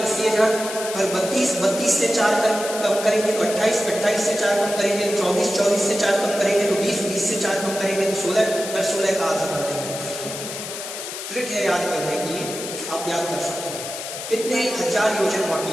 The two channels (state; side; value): noise; left; hiss, 8 dB below the sound